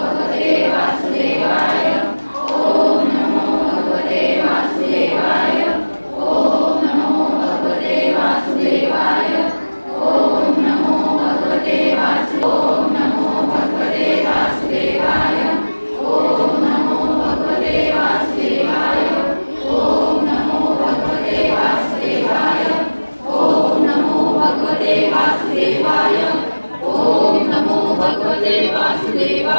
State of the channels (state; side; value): inverted; both; correlation -1.00